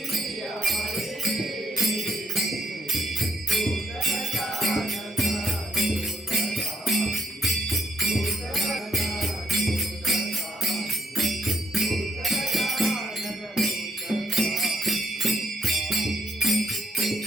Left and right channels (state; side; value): normal; both; correlation 0.71